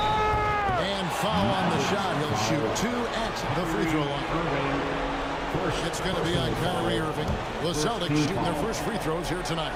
And foul on the shot. He'll shoot 2 at the free throw line. It's going to be on Kyrie Irving. The Celtics shooting their first free throws here tonight.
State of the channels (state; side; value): identical; both; correlation 1.00